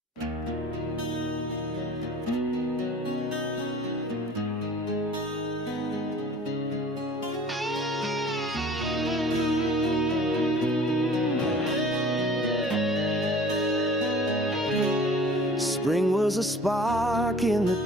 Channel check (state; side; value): normal; both; correlation 0.47